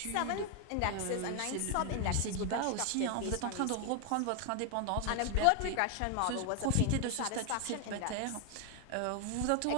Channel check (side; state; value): both; different; correlation 0.01